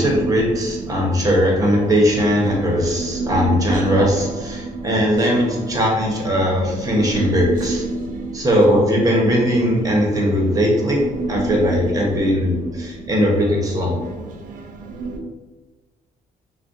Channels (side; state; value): both; normal; correlation 0.65